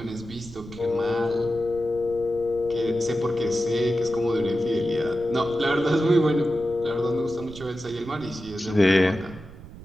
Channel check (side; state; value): right; noise; rumble, 16 dB below the sound